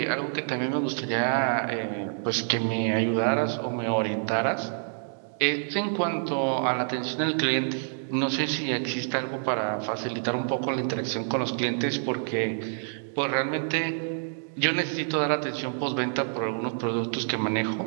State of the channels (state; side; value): silent; left; digital silence